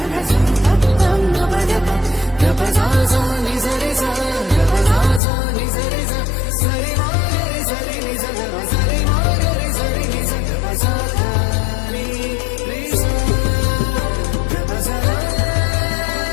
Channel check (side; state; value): right; drops out; at 5.2 s